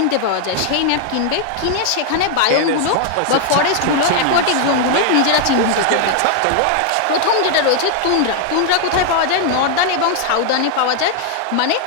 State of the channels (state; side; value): different; both; correlation 0.00